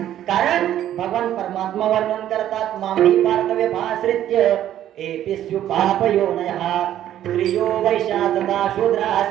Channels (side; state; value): left; quieter; 11.7 dB